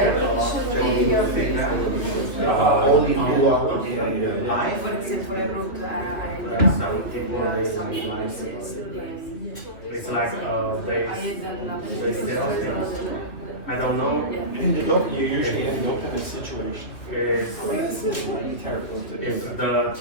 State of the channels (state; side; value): late; right; 3.1 ms